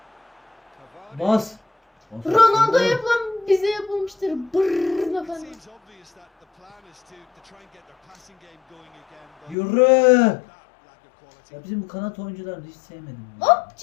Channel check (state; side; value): drops out; right; at 9.6 s